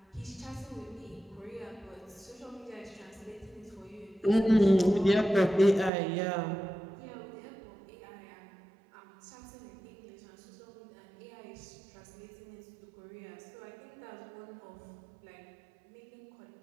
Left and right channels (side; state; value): left; drops out; at 5.9 s